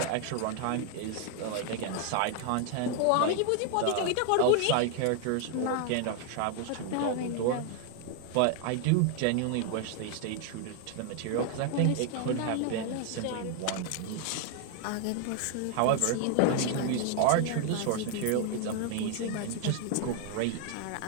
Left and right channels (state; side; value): different; both; correlation 0.01